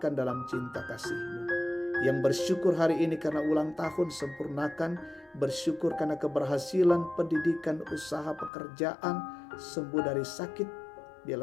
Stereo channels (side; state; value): right; drops out; at 8.5 s